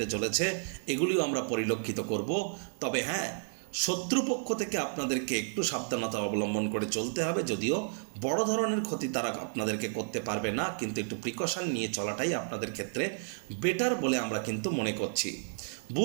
চলেছে, এগুলিও আমরা পরিলক্ষিত করব। তবে হ্যাঁ, শত্রুপক্ষ থেকে আপনাদেরকে একটু সাবধানতা অবলম্বন করে চলতে হবে। যদিও বড় ধরনের ক্ষতি তারা আপনাদেরকে করতে পারবে না, কিন্তু একটু প্রিকশন নিয়ে চলাটাই আপনাদের ক্ষেত্রে বেটার বলে আমরা কিন্তু মনে করছি।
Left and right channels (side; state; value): left; silent; digital silence